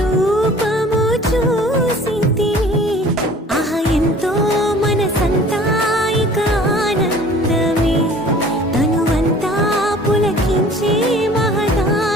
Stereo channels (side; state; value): both; normal; correlation 0.49